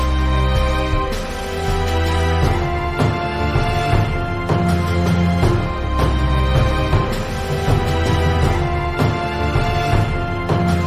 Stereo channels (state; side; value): identical; both; correlation 1.00